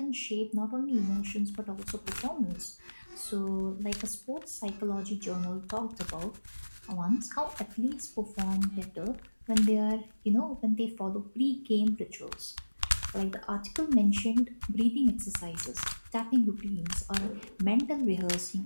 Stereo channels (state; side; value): inverted; both; correlation -1.00